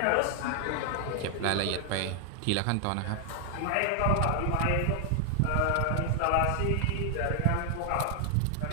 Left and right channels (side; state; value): both; different; correlation 0.00